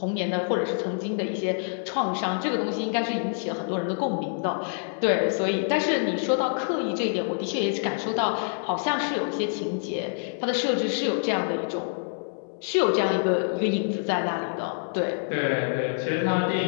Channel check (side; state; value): right; silent; digital silence